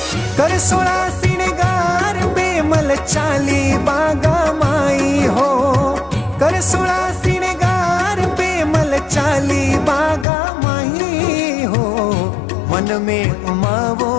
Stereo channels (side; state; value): right; drops out; at 10.2 s